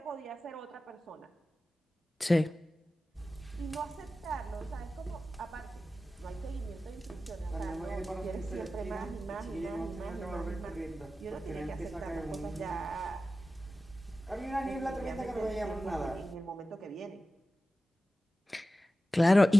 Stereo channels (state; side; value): normal; both; correlation 0.94